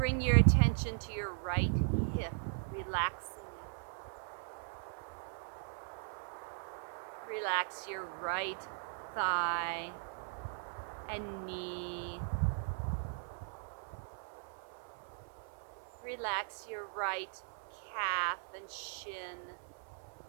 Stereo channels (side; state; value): left; silent; 52 dB below the other